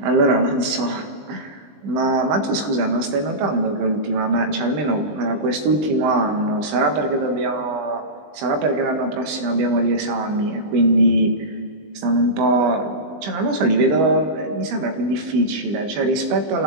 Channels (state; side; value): late; left; 20 ms